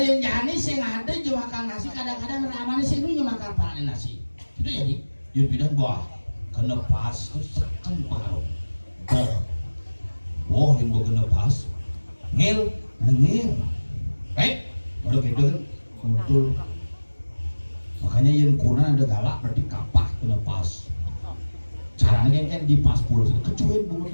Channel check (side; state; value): both; inverted; correlation -1.00